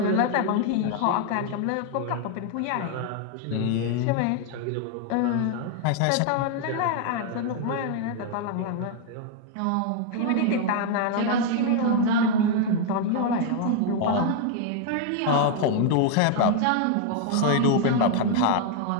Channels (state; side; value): different; both; correlation 0.00